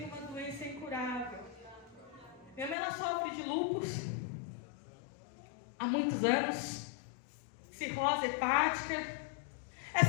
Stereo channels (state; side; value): drops out; right; at 2.8 s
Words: uma doença incurável. Minha mãe, ela sofre de lúpus há muitos anos, cirrose hepática.